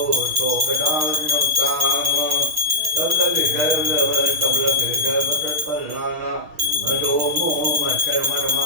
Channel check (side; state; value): left; late; 6.4 ms